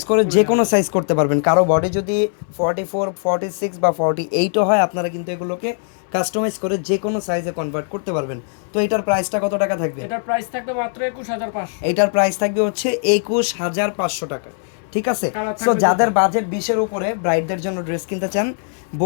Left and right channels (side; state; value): right; silent; 60 dB below the other